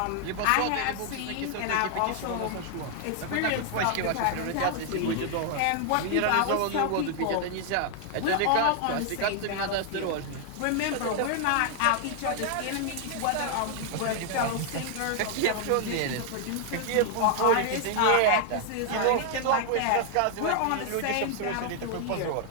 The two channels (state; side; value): different; both; correlation 0.00